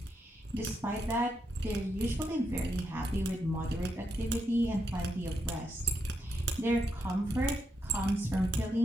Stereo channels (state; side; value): normal; both; correlation 0.82